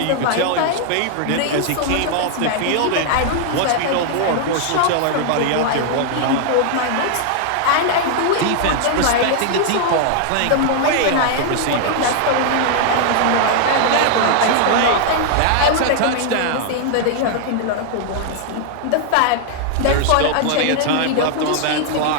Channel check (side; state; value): both; different; correlation 0.00